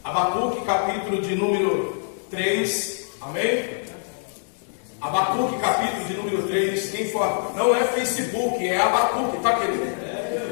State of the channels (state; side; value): silent; right; digital silence